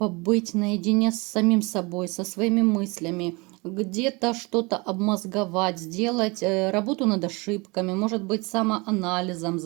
наедине с самим собой, со своими мыслями, где-то что-то обмозговать, сделать работу над ошибками, может быть, самоанализом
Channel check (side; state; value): left; quieter; 26.7 dB